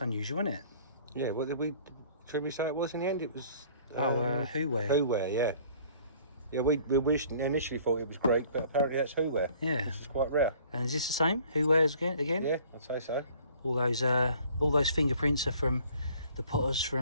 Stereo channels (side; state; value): both; inverted; correlation -0.54